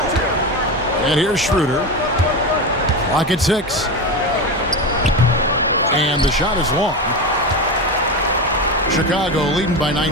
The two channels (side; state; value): both; normal; correlation 0.19